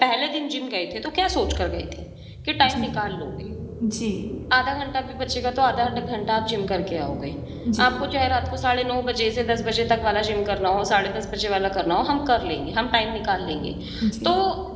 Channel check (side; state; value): both; identical; correlation 1.00